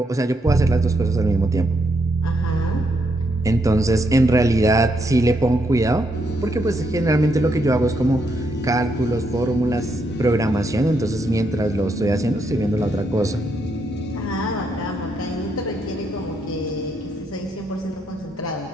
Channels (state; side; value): normal; both; correlation 0.77